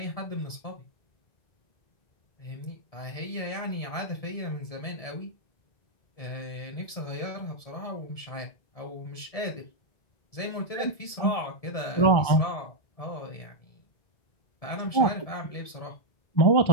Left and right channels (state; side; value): late; right; 1.7 ms